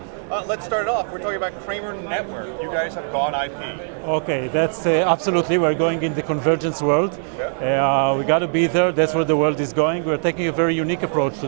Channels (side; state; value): left; silent; 65 dB below the other